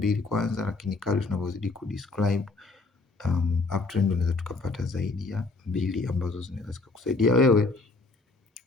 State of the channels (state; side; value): quieter; right; 3.6 dB